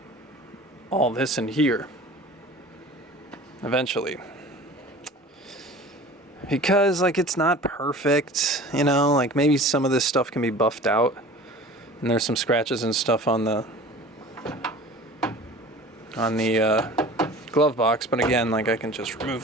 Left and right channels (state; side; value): normal; both; correlation 0.41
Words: all this in here. Eventually. Because like it's not perfect, you know, like maybe some of this stuff can be buffed out. And there's some scratches and stuff on the glove box, but again, like I can just